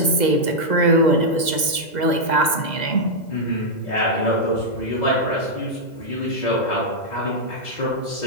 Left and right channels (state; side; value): late; right; 2.0 ms